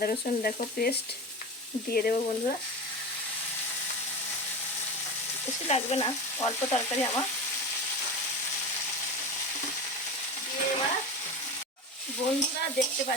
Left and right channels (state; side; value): normal; both; correlation 0.27